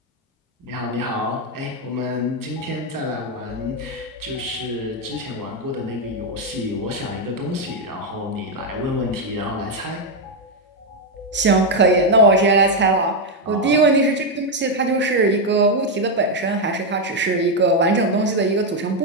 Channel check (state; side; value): normal; both; correlation 0.03